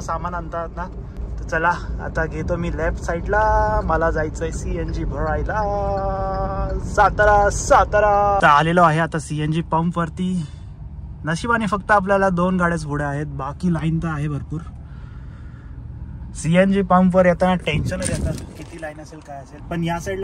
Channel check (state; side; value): identical; both; correlation 1.00